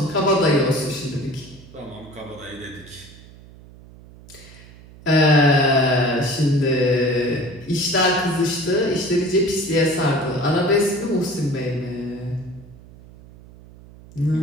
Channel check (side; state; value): right; noise; hum, 21 dB below the sound